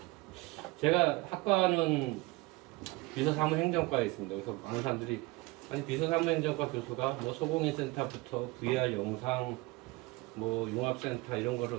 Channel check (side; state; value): left; quieter; 22.8 dB